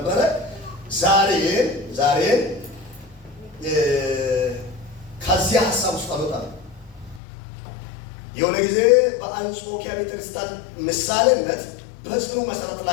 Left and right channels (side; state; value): right; drops out; at 7.2 s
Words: ዛሬ ከዚያ ሐሳብ ውስጥ አልወጣም። የሆነ ጊዜ በአንጾኪያ ቤተክርስቲያን ምሳሌነት በጽኑ መሰረት